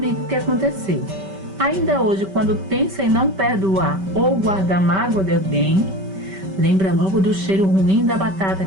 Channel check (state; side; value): late; left; 5.2 ms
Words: o que aconteceu. Ainda hoje, quando pensa em não perdoar ou guardar mágoa de alguém, lembra logo do cheiro ruim da batata